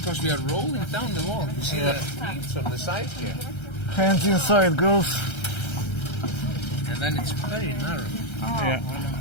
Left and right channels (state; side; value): late; right; 1.3 ms